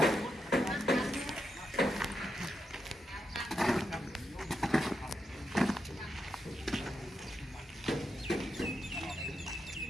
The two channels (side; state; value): both; normal; correlation 0.85